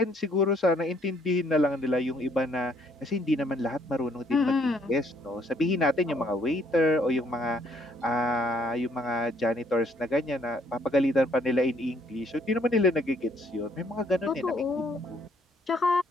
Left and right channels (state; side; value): normal; both; correlation 0.66